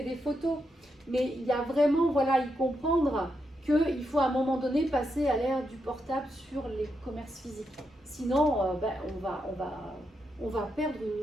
des photos. » Mais il y a vraiment, y comprendre qu'il faut à un moment donné passer à l'ère du portable sur les commerces physiques. Sinon, on va perdre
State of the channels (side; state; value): both; normal; correlation 0.83